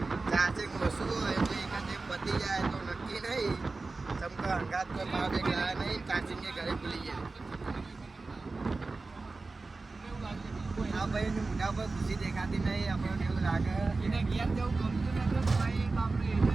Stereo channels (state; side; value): quieter; left; 3.7 dB